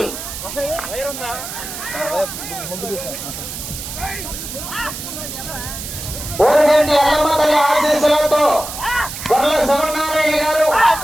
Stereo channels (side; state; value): right; noise; hiss, 8 dB below the sound